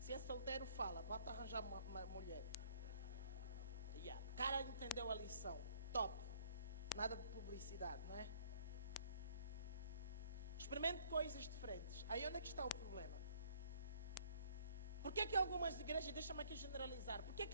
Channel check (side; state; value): both; inverted; correlation -0.60